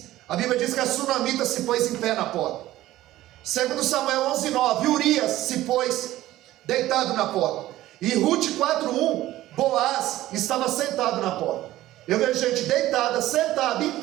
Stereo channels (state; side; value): quieter; left; 15.3 dB